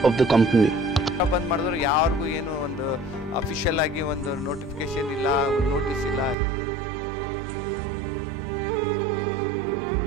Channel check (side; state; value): left; drops out; at 6.4 s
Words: of the company. ಬಂದ್ ಮಾಡಿದ್ರು ಯಾರಿಗೂ ಏನು ಒಂದು ಅಫಿಷಿಯಲ್ ಆಗಿ ಒಂದು ನೋಟಿಫಿಕೇಶನ್ ಇಲ್ಲ, ಒಂದು ನೋಟಿಸ್ ಇಲ್ಲ, ಏನಿಲ್ಲ. ಇದ್ದಕ್ಕಿದ್ದಂಗೆ ನಾಳೆಯಿಂದ ನೀವು ಕೆಲಸಕ್ಕೆ